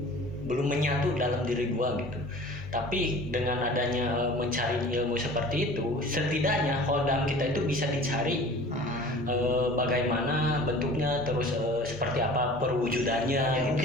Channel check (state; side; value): normal; both; correlation 0.43